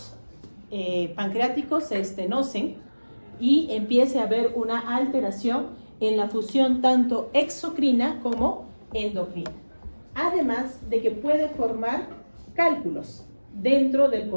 pancreáticos se estenosen y empiece a haber una alteración en la función tanto exocrina como endocrina. Además de que puede formar cálculos dentro del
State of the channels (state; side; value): inverted; both; correlation -1.00